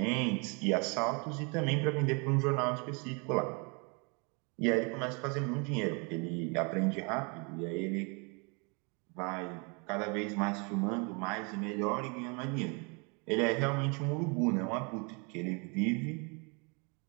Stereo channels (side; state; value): left; quieter; 32.8 dB